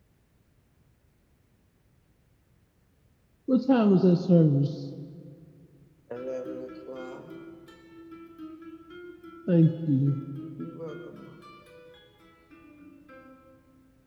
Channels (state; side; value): identical; both; correlation 1.00